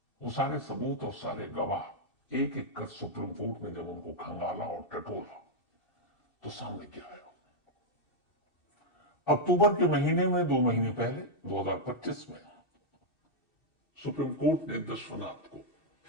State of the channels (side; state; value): right; late; 2.7 ms